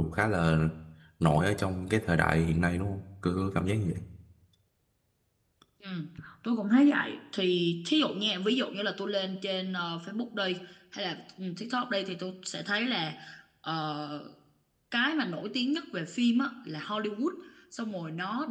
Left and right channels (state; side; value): identical; both; correlation 1.00